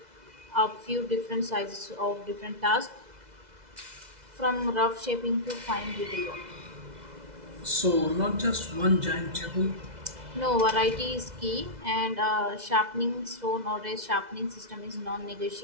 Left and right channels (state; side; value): late; left; 2.0 ms